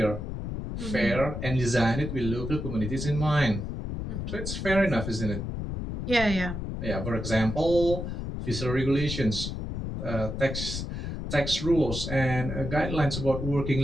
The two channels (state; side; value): noise; left; rumble, 5 dB below the sound